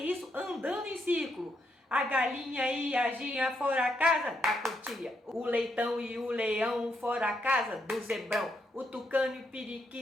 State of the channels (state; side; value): normal; both; correlation 0.78